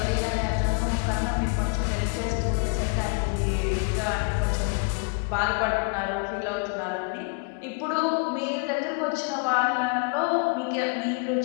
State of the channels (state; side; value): quieter; right; 36.4 dB